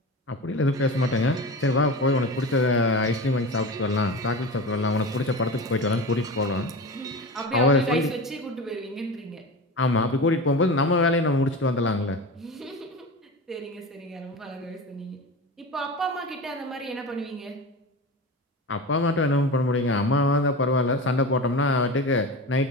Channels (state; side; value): normal; both; correlation 0.29